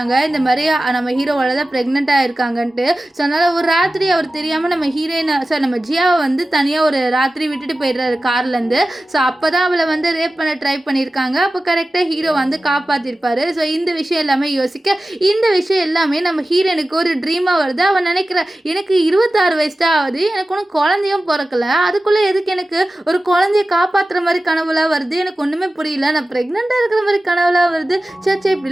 இந்த மாதிரி நம்ம ஹீரோவோட தான் ப்ரெக்னெண்ட்டாக இருக்காங்கன்ட்டு. ஸோ அதனால் ஒரு ராத்திரி அவர் தெரியாமல் நம்ம ஹீரோயினை சார் நம்ம ஜியாவை வந்து தனியாக ஒரு ராத்திரி விட்டுட்டு போயிடுறாரு கார்லேருந்து. ஸோ அப்போ தான் அவளை வந்து ரேப் பண்ண ட்ரை பண்ணியிருக்காங்க. அப்போ கரெக்டாக ஹீரோ வந்து காப்பாற்றிருப்பாரு. ஸோ இந்த விஷயம் எல்லாமே யோசிக்க, இந்த விஷயம் எல்லாமே நம்ம ஹீரோனுக்கு ஒரு ட்ரீமாக வருது. அவன் நினைக்கிற, எனக்கு 26 வயசு தான் ஆகுது, எனக்கு ஒன்றும் குழந்தையும் பிறக்கல, அதுக்குள்ளே எதுக்கு எனக்கு ஒரு குழந்தைய காப்பாற்றுற மாதிரி கனவுலாம் வருது, எனக்கு ஒன்றுமே புரியல, நான் ப்ரெக்னெண்ட்டாக இருக்கிற மாதிரி கனவுலாம் வருது, சே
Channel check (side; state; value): both; normal; correlation 0.95